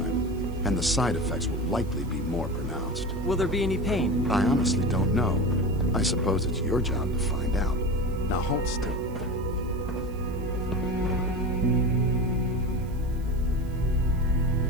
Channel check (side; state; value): right; noise; hiss, 26 dB below the sound